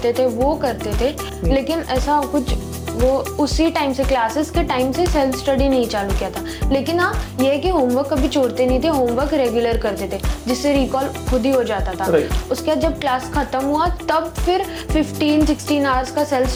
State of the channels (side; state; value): both; identical; correlation 1.00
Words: थे वो करते थे, लेकिन ऐसा कुछ वो उसी टाइम से, क्लासेस के टाइम से सेल्फ स्टडी नहीं चालू किया था। लेकिन हाँ, ये है कि होमवर्क कभी छोड़ते नहीं थे, होमवर्क रेगुलर करते थे जिससे रिकॉल खुद ही हो जाता था। उसके बाद जब क्लास खत्म हुआ तब फिर 15-16 आवर्स का सेल्फ